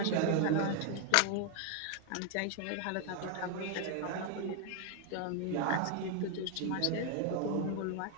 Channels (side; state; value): both; different; correlation 0.01